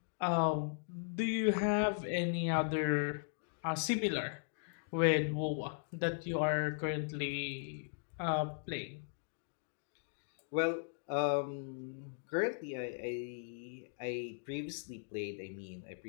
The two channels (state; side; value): silent; right; digital silence